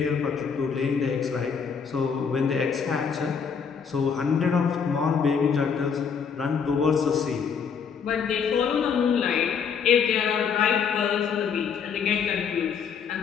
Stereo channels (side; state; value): right; quieter; 6.5 dB